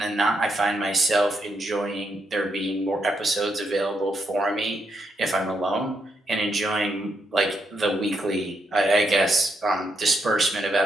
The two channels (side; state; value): both; normal; correlation 0.79